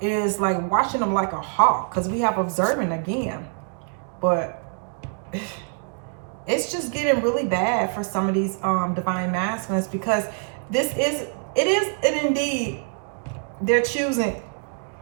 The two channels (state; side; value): silent; left; 56 dB below the other